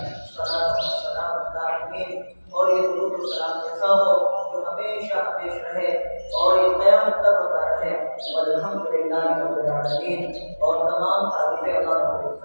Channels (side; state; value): both; inverted; correlation -1.00